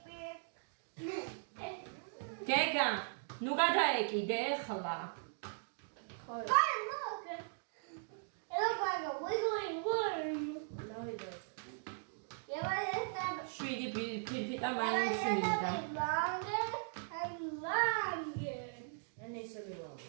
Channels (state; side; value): silent; left; digital silence